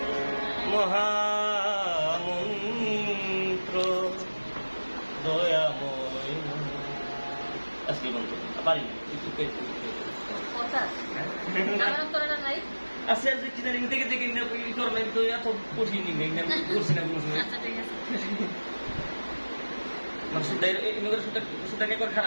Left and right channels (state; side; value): inverted; both; correlation -1.00